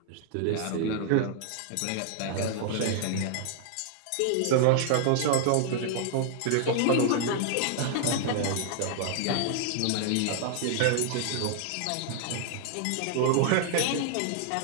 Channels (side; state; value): both; different; correlation 0.00